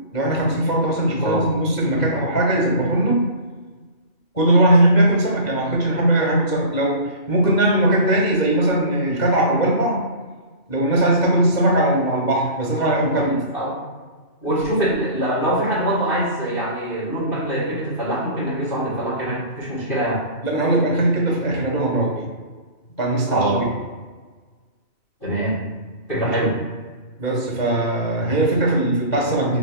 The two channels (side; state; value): right; late; 2.7 ms